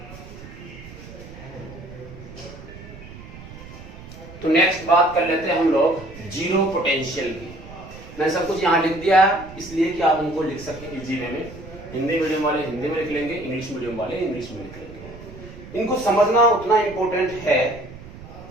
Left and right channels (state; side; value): noise; right; rumble, 16 dB below the sound